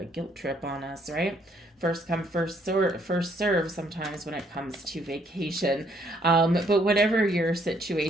guilt trip on us, right? First come, first serve sometimes when it comes to vacation. But whatever your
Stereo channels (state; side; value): normal; both; correlation 0.68